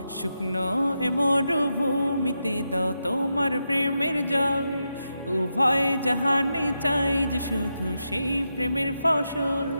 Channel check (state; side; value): inverted; both; correlation -0.87